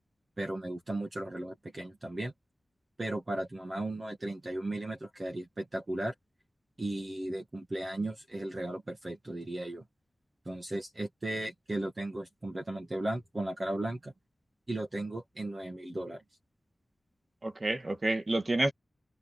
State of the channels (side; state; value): both; normal; correlation 0.97